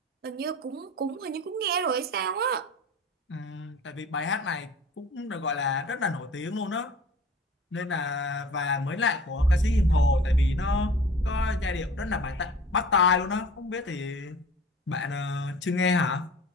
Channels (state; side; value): normal; both; correlation 0.43